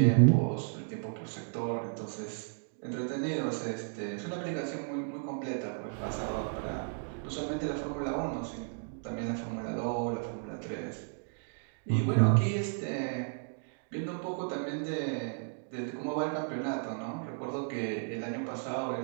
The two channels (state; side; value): silent; left; 55 dB below the other